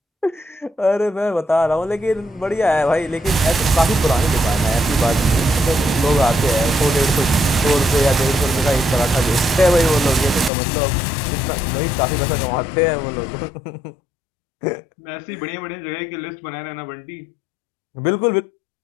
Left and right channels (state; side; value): drops out; right; at 10.5 s